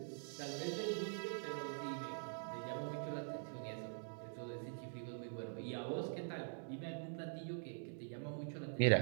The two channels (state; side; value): silent; left; digital silence